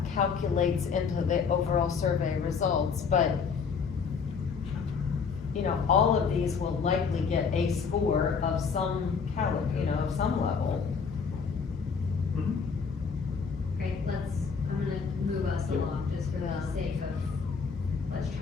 calculates into the overall survey results, but, you know, all of these will likely get a score of some of some level. Great, I'm gonna move us along just for the sake of, let's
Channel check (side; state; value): right; quieter; 5.7 dB